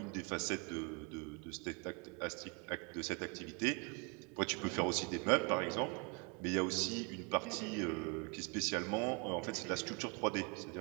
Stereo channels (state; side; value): quieter; left; 32.3 dB